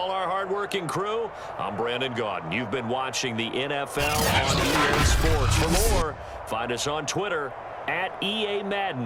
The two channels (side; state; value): both; identical; correlation 1.00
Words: our hardworking crew, I'm Brandon Gaudin. You've been watching the NFL on EA Sports. For more, find us on Twitter at EA